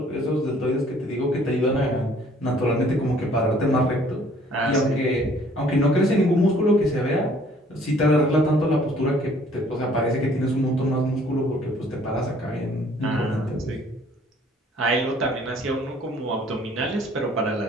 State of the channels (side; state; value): both; normal; correlation 0.58